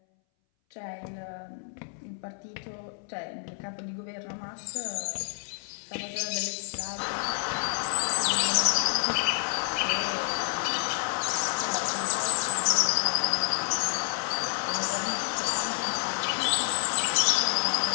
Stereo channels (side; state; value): right; silent; 59 dB below the other